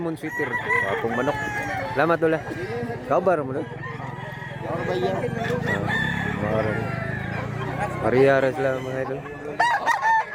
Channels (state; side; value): identical; both; correlation 1.00